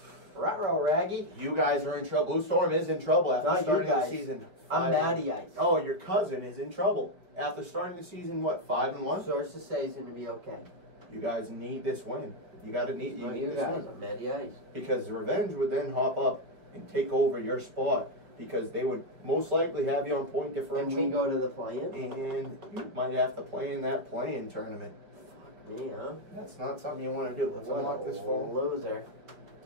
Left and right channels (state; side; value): late; left; 5.1 ms